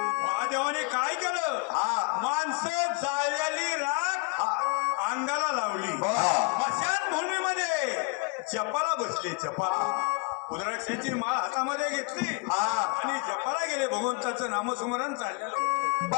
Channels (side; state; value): right; quieter; 30.2 dB